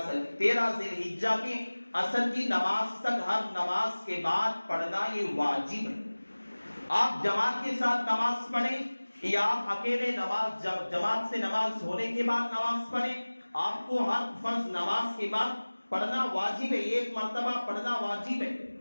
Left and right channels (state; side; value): inverted; both; correlation -1.00